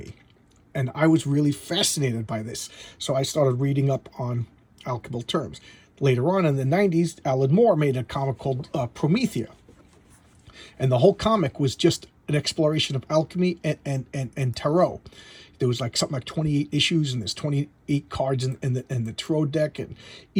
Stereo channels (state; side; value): identical; both; correlation 1.00